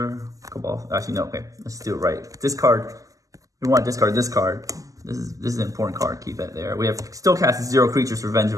Cabal. Actually, no, okay. Let's do it right. Discard. We want to discard this card. This is an important card. Keep that there. We have still cast 0 creatures for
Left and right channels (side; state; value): left; late; 0.16 ms